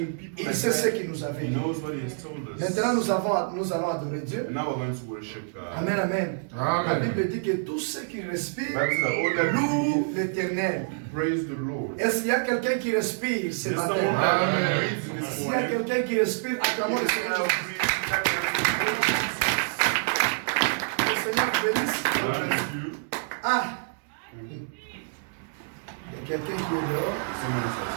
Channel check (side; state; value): left; silent; digital silence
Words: Il sait ce qu'il nous avait dit. Maintenant, nous allons adorer Dieu. Amen, amen. La Bible dit que tout ce qui respire loue l'Éternel. Est-ce qu'il y a quelqu'un qui respire ce matin? S'il y a quelqu'un qui respire, acclamons le Seigneur. Le Seigneur bénisse. Ah! Il y a quelqu'un qui est dehors.